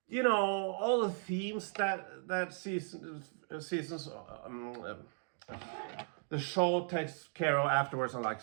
all the themes that seasons the show takes care of afterwards on like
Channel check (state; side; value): silent; left; 53 dB below the other